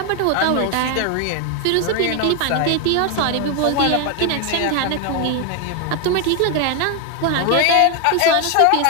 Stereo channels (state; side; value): different; both; correlation 0.01